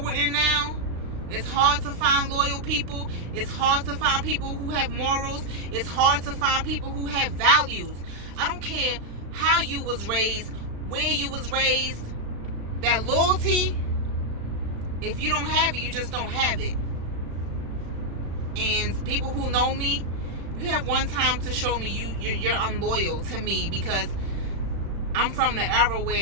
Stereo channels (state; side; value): late; left; 36 ms